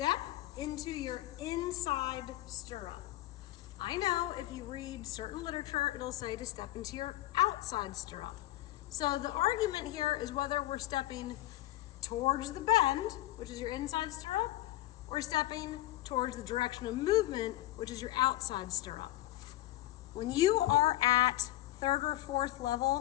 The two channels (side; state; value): right; quieter; 15.9 dB